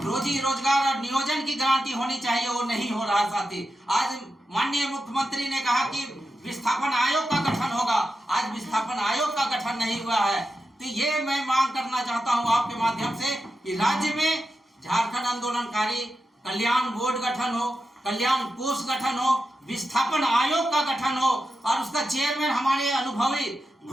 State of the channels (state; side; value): normal; both; correlation 0.90